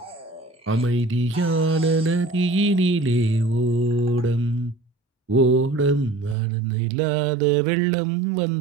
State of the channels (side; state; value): left; drops out; at 6.4 s